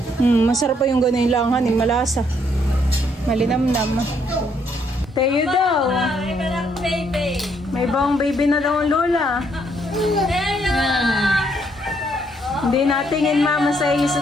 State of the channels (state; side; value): normal; both; correlation 0.71